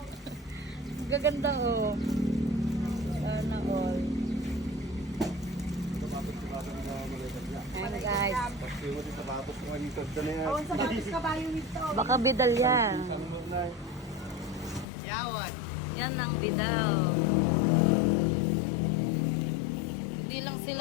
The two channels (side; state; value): right; drops out; at 14.9 s